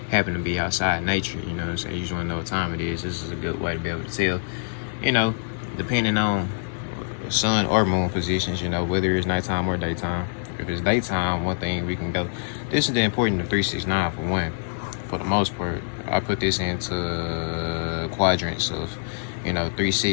happen to be outside in nature, you know what I'm saying? You just want to know what time it is. This is a good way to be able to tell, depending on sun or moon positions, whether it's nighttime or daytime. If it's daytime, one thing we can go. This is the importance of 369 for one. For the most part, I put this into quadrants of, 3,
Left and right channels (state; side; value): silent; right; digital silence